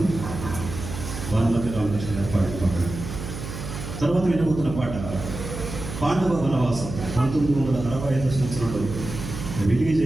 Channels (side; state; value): right; noise; hum, 8 dB below the sound